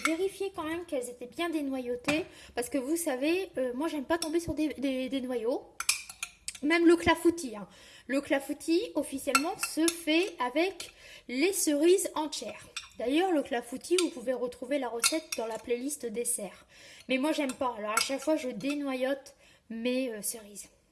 vérifié quand même qu'elles étaient bien dénoyautées. Parce que vous savez, moi, j'aime pas tomber sur des noyaux. Même le clafoutis. Hein. Le clafoutis, officiellement, se fait avec les cerises entières. D'ailleurs, le clafoutis, vous pouvez retrouver la recette dans la playlist dessert. Mais moi, j'aime pas. Alors, à chaque fois, je dénoyote mes cerises.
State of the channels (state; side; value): identical; both; correlation 1.00